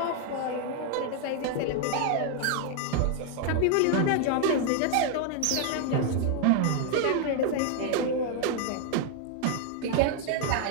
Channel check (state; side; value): different; both; correlation 0.00